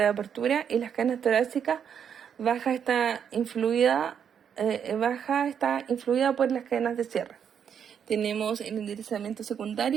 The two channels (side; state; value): left; quieter; 8.0 dB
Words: de apertura y las cadenas torácicas baja está influida por las cadenas de cierre. Tenemos el enderezamiento